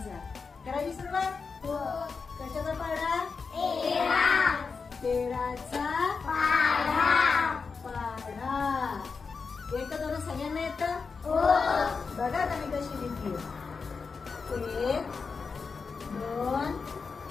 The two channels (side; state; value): right; quieter; 5.0 dB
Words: करायची सुरुवात. कशाचा पाढा? 13चा पाढा. एक दोन सगळ्यांना येतं? बघा ना मी कशी लिहिली. 1 2